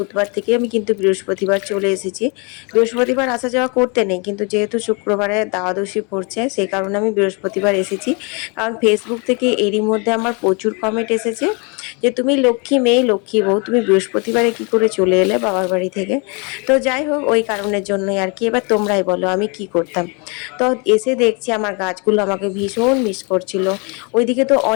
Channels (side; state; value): right; quieter; 32.3 dB